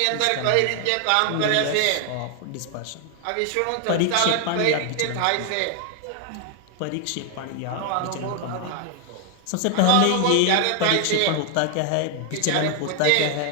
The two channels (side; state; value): both; different; correlation 0.01